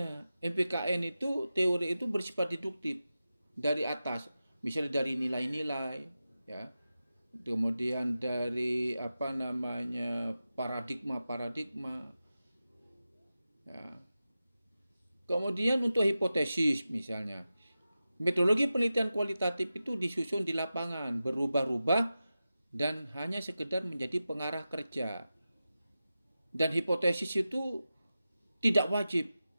MPKN itu teori itu bersifat deduktif dari atas, misalnya dari nilai-nilai, ya. Kemudian dari paradigma. Ya. Kemudian untuk hipotesis misalnya. Metodologi penelitian kualitatif itu disusun di lapangan, berubah-ubah dan hanya sekedar menjadi pengarah kerja. Dan hipotesis itu tidak wajib.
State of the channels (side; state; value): both; inverted; correlation -0.93